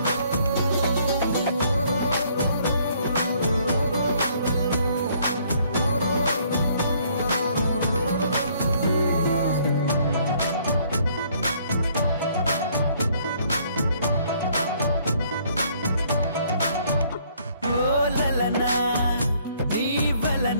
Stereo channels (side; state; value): both; inverted; correlation -0.63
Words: ఓ లలనా నీ